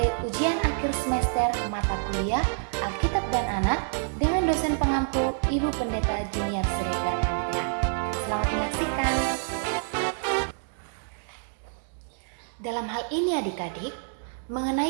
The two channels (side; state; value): left; silent; 60 dB below the other